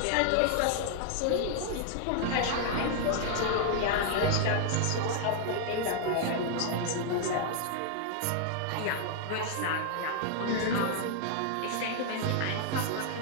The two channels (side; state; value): both; different; correlation 0.00